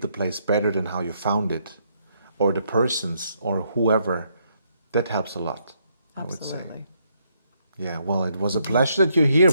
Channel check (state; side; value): inverted; both; correlation -0.73